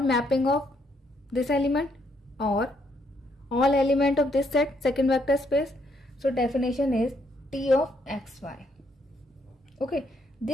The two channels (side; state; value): both; normal; correlation 0.72